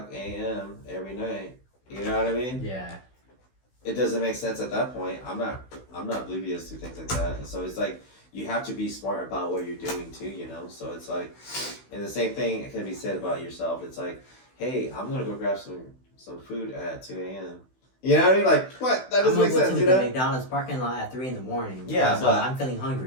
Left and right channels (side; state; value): right; late; 16 ms